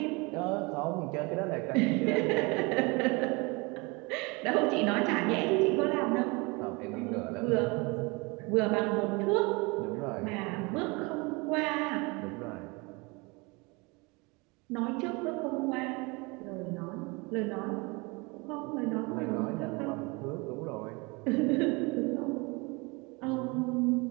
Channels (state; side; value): quieter; left; 27.2 dB